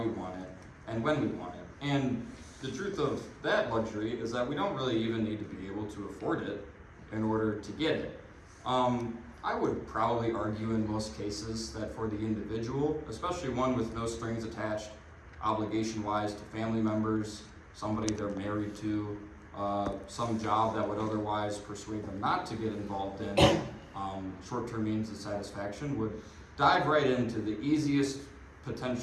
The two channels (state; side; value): identical; both; correlation 1.00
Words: want it, and when we want it. And the truth of that luxury is that we don't really even need to be able to afford it in order to get it. I would probably argue in most cases that for the individual, especially one with no strings attached, obligation-wise to family members, somebody they're married to, some job that would otherwise persuade them not to get involved in short-term means of satisfaction, would dive right into the easiest